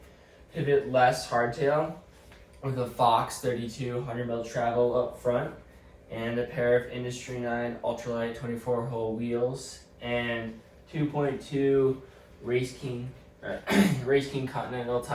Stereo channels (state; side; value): identical; both; correlation 1.00